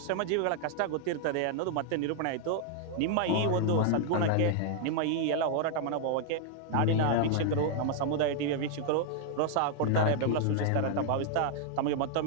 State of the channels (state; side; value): different; both; correlation 0.00